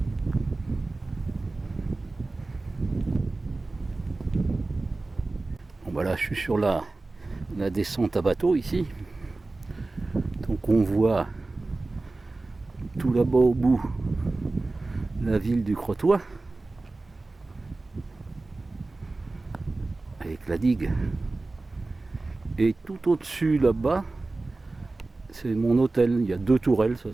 Bon bah là je suis sur la descente à bateau ici. Donc on voit tout là-bas au bout la ville du Crotoy avec la digue. Et tout au-dessus là-bas, c'est mon hôtel. Il y a 2 tourelles,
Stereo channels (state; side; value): quieter; left; 3.3 dB